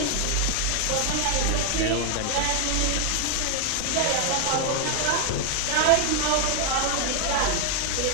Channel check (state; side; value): different; both; correlation 0.00